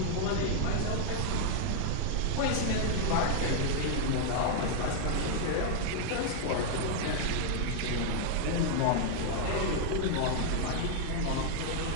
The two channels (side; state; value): both; different; correlation 0.00